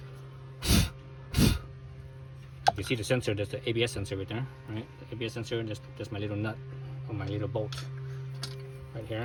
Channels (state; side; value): identical; both; correlation 1.00